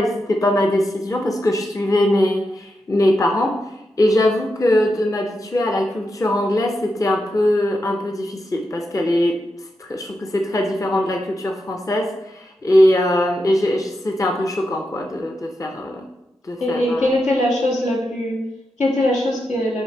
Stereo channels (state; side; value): normal; both; correlation 0.87